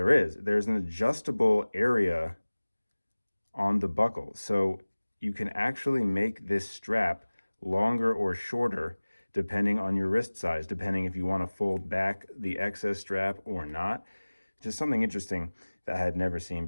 adjustable area on the buckle. So you can actually make this strap longer or shorter depending on your wrist size, depending if you want to fold back the excess strap or not. Just something interesting that I had never seen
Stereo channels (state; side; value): inverted; both; correlation -1.00